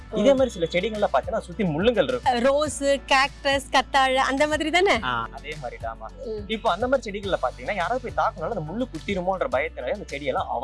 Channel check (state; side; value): identical; both; correlation 1.00